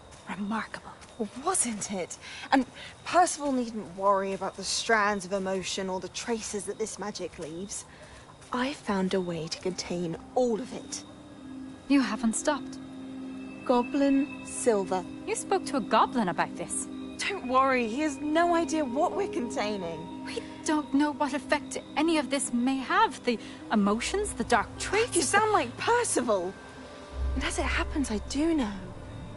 remarkable. Wasn't it? And Percival needn't worry about the strands of emotion or the traces that this magic leaves. I found a way to contain all of it. You haven't stopped. Goblin Silver. You spoke to a goblin about this. Don't worry, he has no idea what we're containing. We don't know what effect any of this may have. The emotions, the dark traits. You sound like Percival. And as it happens, I do know.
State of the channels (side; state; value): both; identical; correlation 1.00